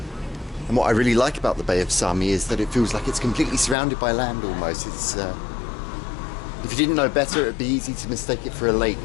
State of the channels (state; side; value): drops out; right; at 3.8 s